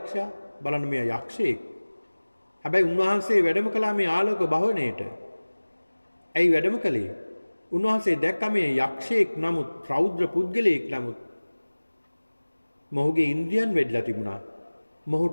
බලන්න මේ යක්ෂයෙක්. හැබැයි උන්වහන්සේ වැඩම කළා මේ ආලෝක භවණයට. ඇයි වැඩම කළේ? උන්වහන්සේ දැක්ක මේ යක්ෂයෙක් නමුත් රෞද්‍ර පුද්ගලයෙක් නමුත් මොහුගේ ඉන්ද්‍රියන් වැඩිලා තිබුණා.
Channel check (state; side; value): inverted; both; correlation -1.00